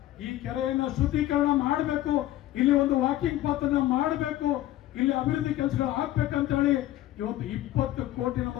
ಈ ಕೆರೆಯನ್ನ ಶುದ್ಧೀಕರಣ ಮಾಡಬೇಕು, ಇಲ್ಲಿ ಒಂದು ವಾಕಿಂಗ್ ಪಾತನ್ನ ಮಾಡಬೇಕು, ಇಲ್ಲಿ ಅಭಿವೃದ್ಧಿ ಕೆಲಸಗಳು ಆಗ್ಬೇಕಂತ ಹೇಳಿ ಇವತ್ತು 20 ಕೋಟಿ ನಮ್ಮ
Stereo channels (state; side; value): quieter; right; 14.6 dB